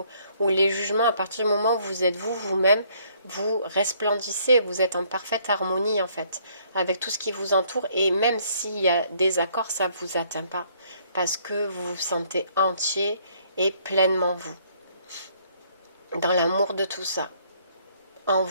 ou les jugements. À partir du moment où vous êtes vous-même, vous resplendissez, vous êtes en parfaite harmonie en fait, avec tout ce qui vous entoure, et même s'il y a des accords, ça ne vous atteint pas, parce que vous vous sentez entier et pleinement vous, dans l'amour de tout ça, en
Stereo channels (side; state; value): both; inverted; correlation -0.65